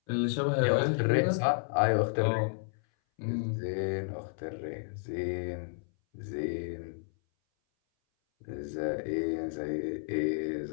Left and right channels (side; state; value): right; silent; 57 dB below the other